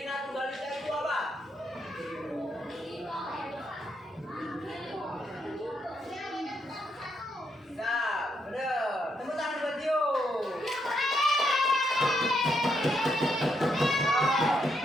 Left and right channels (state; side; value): normal; both; correlation 0.77